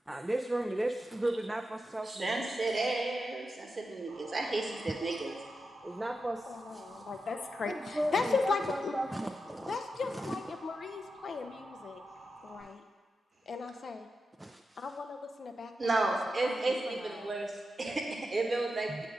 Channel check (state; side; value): normal; both; correlation 0.88